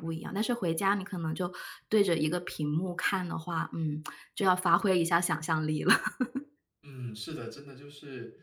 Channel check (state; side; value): identical; both; correlation 1.00